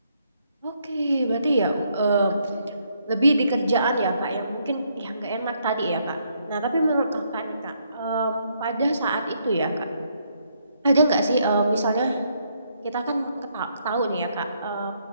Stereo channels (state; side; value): inverted; both; correlation -0.73